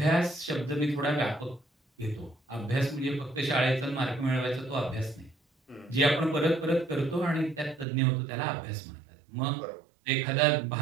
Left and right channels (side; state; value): left; drops out; at 7.9 s